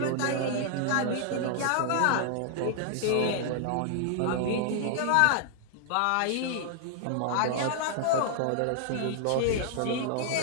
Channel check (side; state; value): both; different; correlation 0.00